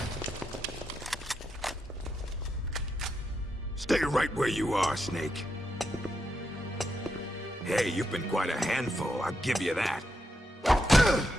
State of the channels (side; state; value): both; normal; correlation 0.83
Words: Stay right where you are, Snake. Hey, you've been quite a handful, I'll give you that.